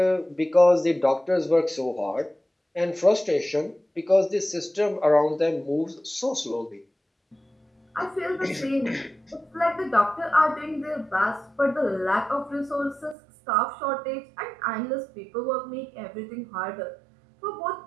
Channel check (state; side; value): drops out; left; at 13.2 s